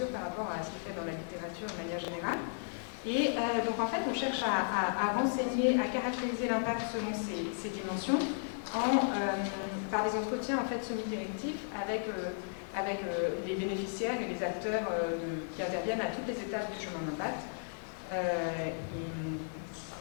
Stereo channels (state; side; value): silent; right; digital silence